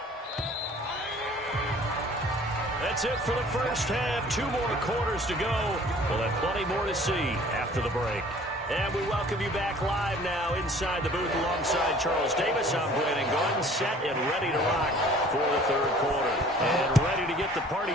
That's it for the first half. 2 more quarters to go. We'll have plenty more to see after the break. And we welcome you back live now inside the booth alongside Charles Davis. I'm Brandon Gordon, set and ready to rock for the third quarter. And ready to get the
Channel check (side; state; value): both; normal; correlation 0.51